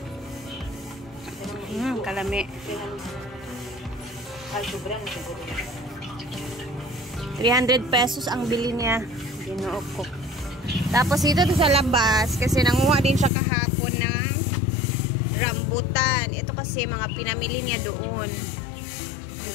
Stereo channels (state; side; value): drops out; right; at 13.3 s